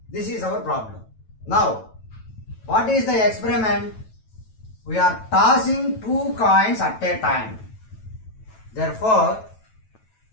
This is our problem. Now, what is the experiment? We are tossing two coins at a time. Therefore,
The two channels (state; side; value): late; right; 9.1 ms